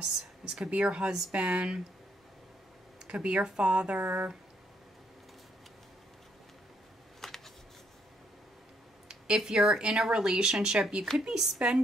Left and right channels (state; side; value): normal; both; correlation 0.72